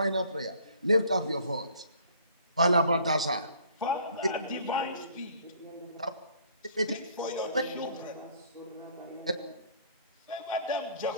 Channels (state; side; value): inverted; both; correlation -0.56